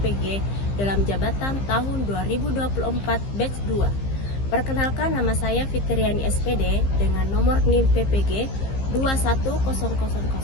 dalam jabatan tahun 2024 batch 2. Perkenalkan, nama saya Fitriani SPD dengan nomor NIM PPG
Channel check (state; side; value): late; right; 15 ms